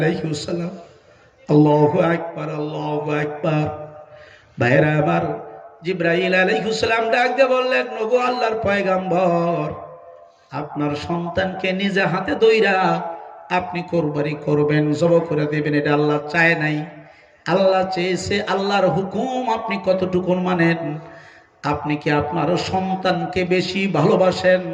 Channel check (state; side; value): identical; both; correlation 1.00